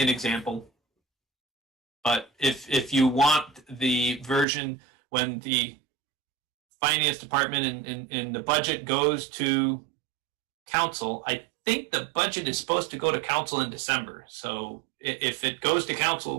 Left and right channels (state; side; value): drops out; left; at 4.5 s